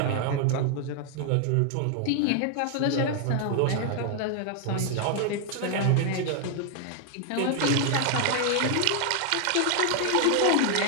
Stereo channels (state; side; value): different; both; correlation 0.00